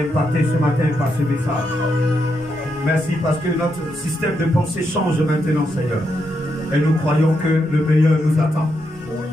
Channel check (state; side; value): normal; both; correlation 0.82